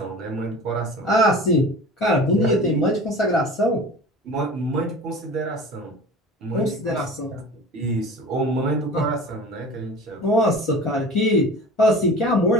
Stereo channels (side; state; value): both; normal; correlation 0.38